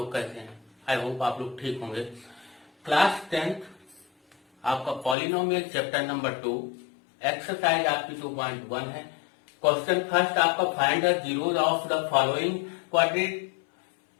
कैसे हैं? आई होप आप लोग ठीक होंगे। क्लास 10th आपका पॉलिनोमियल चैप्टर नंबर 2 एक्सरसाइज आपकी 2.1 है। क्वेश्चन फर्स्ट आपका find the zeros of the following quadratic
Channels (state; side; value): drops out; right; at 5.2 s